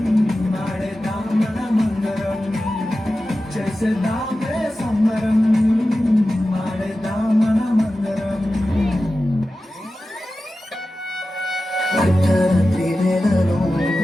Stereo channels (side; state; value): both; normal; correlation 0.94